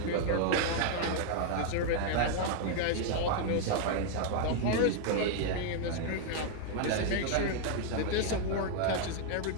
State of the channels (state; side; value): different; both; correlation 0.00